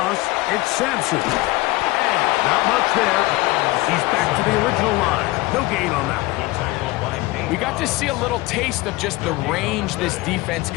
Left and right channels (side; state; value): right; quieter; 20.5 dB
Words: it's Sampson. And not much there. He's back to the original line. No gain on that one. We got to see a little taste of just the range this defense